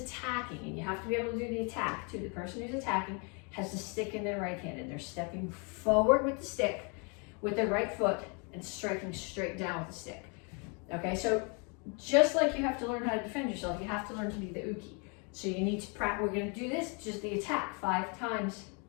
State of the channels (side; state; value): right; quieter; 34.5 dB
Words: and you have to be able to do the attack too, the person who's attacking has the stick in their right hand and they're stepping forward with the stick with their right foot and striking straight down with the stick. Okay, so just like you have to learn how to defend yourself, you have to learn to be the uke. So you need to practice, we're gonna do this, just the attack 5 times